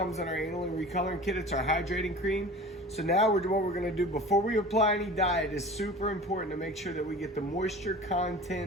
in our aniline recoloring kit. It's our hydrating cream. So now what we're gonna do before we apply any dye, it is super important to make sure that we get the moisture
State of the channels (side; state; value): both; normal; correlation 0.39